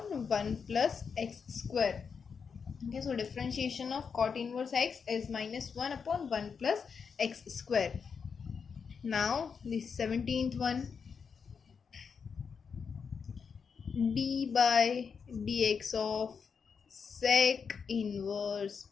plus x square. Okay, so differentiation of cot inverse x is -1/1 plus x square. Now the 17th one, d/dx of sec inverse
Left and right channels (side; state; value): right; quieter; 6.0 dB